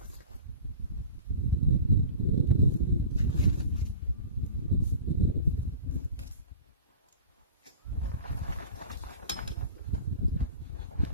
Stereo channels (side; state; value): both; inverted; correlation -0.39